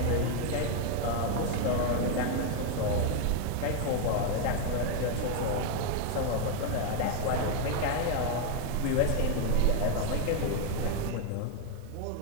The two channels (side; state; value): both; different; correlation 0.01